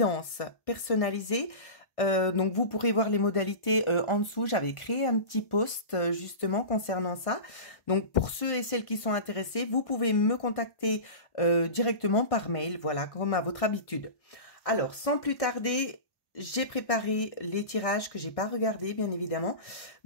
personnalisée. Donc vous pourrez voir les modalités en dessous. J'avais créé un petit post justement concernant ça. Donc pour ceux et celles qui sont intéressés, vous pouvez me contacter directement par mail, voilà, comme à votre habitude. Alors sans plus tarder, j'ai préparé les tirages que j'ai pas regardés bien évidemment.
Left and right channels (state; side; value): late; right; 1.1 ms